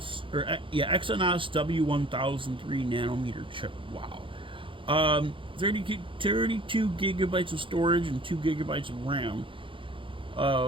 W1003 nanometer chip. Wow. 32 gigabytes of storage and 2 gigabytes of RAM.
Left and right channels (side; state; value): left; late; 0.25 ms